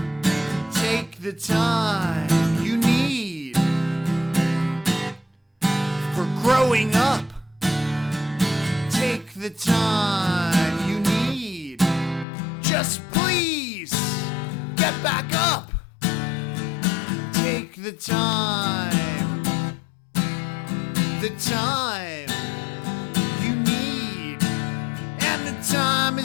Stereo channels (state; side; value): drops out; right; at 12.2 s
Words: Take the time you need for growing up. Take the time you need. Just please get back up. Take the time you need. And the time